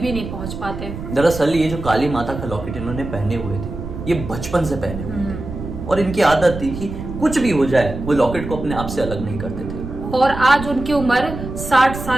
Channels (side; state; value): right; noise; rumble, 8 dB below the sound